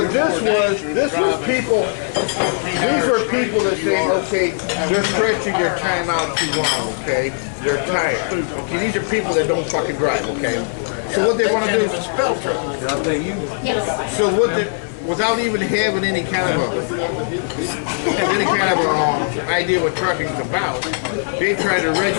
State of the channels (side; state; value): right; silent; 56 dB below the other